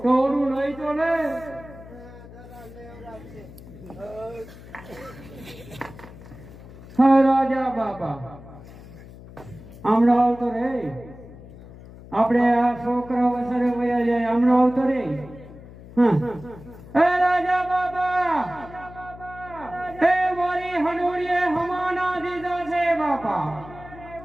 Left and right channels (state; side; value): noise; left; hum, 17 dB below the sound